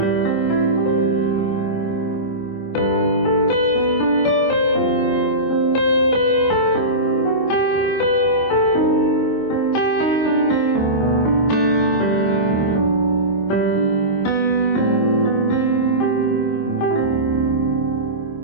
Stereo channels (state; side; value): late; right; 26 ms